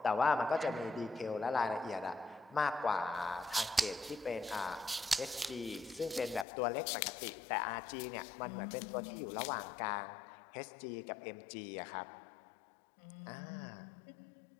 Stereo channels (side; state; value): right; drops out; at 6.5 s